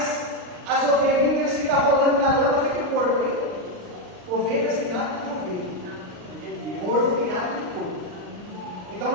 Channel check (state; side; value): late; left; 39 ms